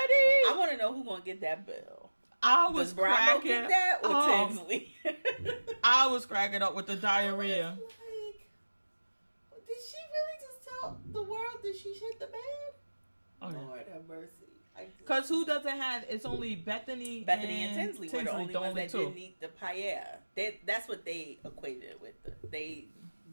I want to know who's going to get that bill. Does Bravo get that or Tinsley? I was cracking up with the diarrhea. Like, did she really just tell the world that she shit the bed? Oh, Lord have mercy. Because who doesn't have... It's only Bethany and Tinsley were the only ones that didn't eat the paella. That's what they equated it with.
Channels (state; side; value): inverted; both; correlation -1.00